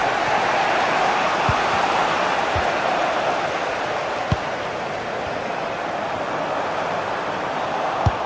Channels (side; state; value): both; identical; correlation 1.00